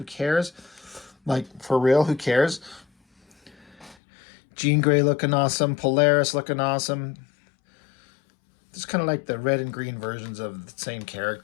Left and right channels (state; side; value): drops out; right; at 4.0 s